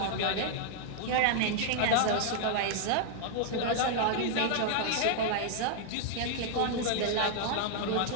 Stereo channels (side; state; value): both; different; correlation -0.01